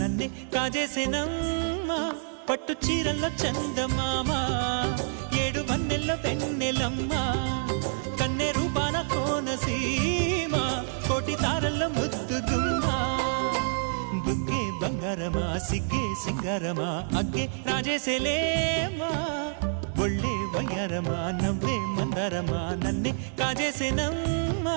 కాజేసేనమ్మా పట్టు చీరల్లో చందమామా ఏడు వన్నెల్లో వెన్నెలమ్మా కన్నె రూపాన కోనసీమ కోటి తారల్లో ముద్దుదుమ్మా బుగ్గే బంగారమా సిగ్గే సింగారమా అగ్గే రాజేసేలేమా ఒళ్ళే వయ్యారమా నవ్వే మందారమా నన్నే కాజేసేనమ్మా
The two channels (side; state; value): left; silent; 60 dB below the other